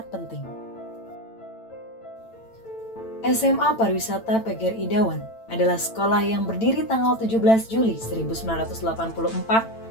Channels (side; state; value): right; late; 8.9 ms